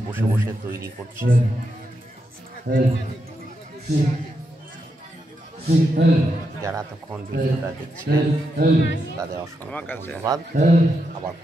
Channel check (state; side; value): normal; both; correlation 0.84